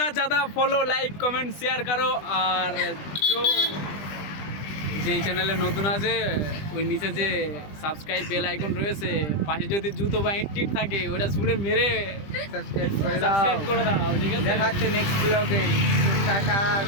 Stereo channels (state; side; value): late; right; 20 ms